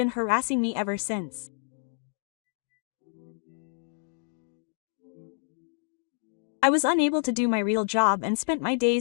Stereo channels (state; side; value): silent; right; digital silence